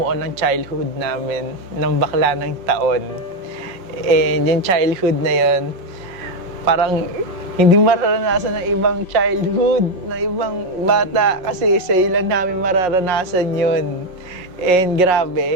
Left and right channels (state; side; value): late; left; 5.5 ms